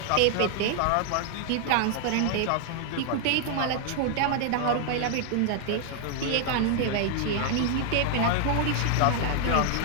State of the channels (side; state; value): both; different; correlation 0.00